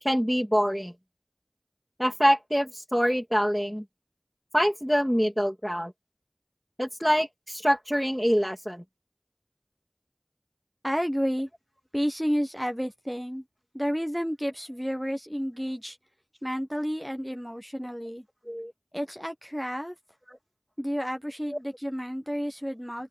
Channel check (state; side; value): identical; both; correlation 1.00